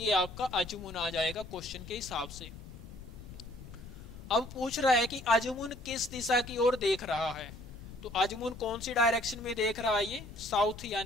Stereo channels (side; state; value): left; noise; rumble, 15 dB below the sound